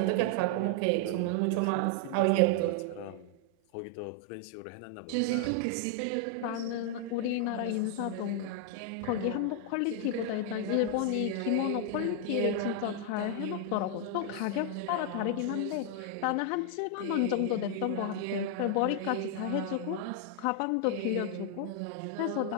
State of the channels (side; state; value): both; different; correlation 0.00